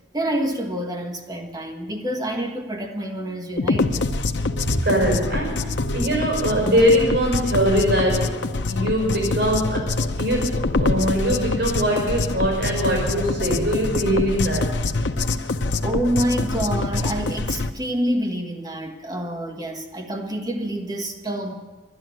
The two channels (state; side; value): normal; both; correlation 0.42